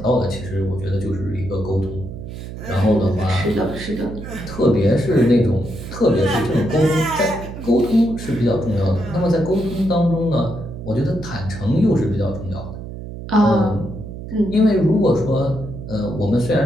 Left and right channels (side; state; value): right; noise; hum, 10 dB below the sound